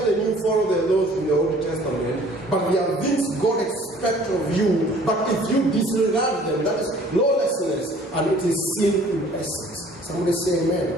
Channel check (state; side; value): normal; both; correlation 0.53